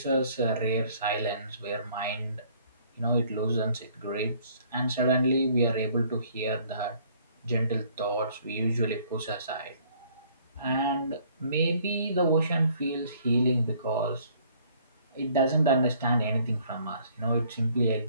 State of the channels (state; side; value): inverted; both; correlation -0.60